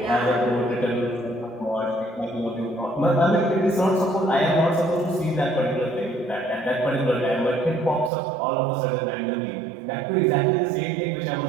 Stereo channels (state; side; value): drops out; left; at 8.1 s